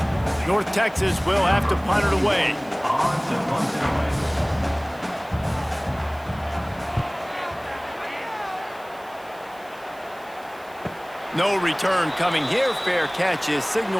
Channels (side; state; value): right; noise; hiss, 25 dB below the sound